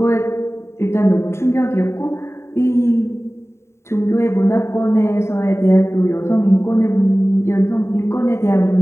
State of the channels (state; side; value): late; right; 0.13 ms